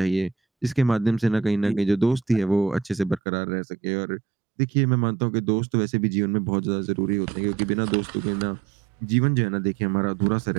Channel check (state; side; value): drops out; left; at 3.2 s